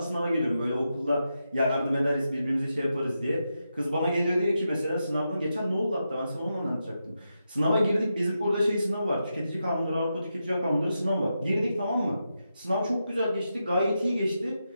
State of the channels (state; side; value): inverted; both; correlation -0.87